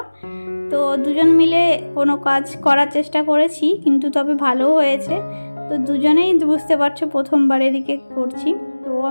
তো দুজন মিলে কোনো কাজ করার চেষ্টা করেছি, কিন্তু তবে ভালোও হয়েছে। তো দুজনেই বুঝতে পারছো প্রথমবার এদিকে করছি, তো ও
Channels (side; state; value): both; inverted; correlation -1.00